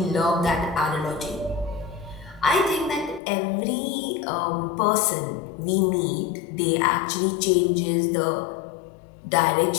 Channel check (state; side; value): drops out; right; at 3.2 s